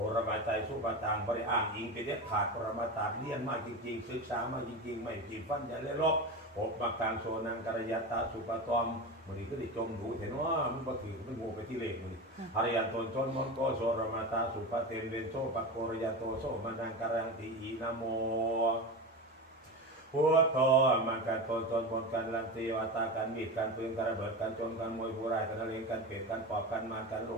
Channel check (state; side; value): normal; both; correlation 0.24